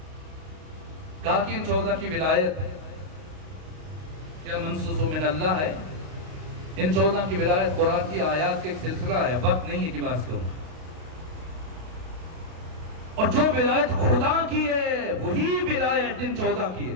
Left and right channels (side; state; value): left; late; 32 ms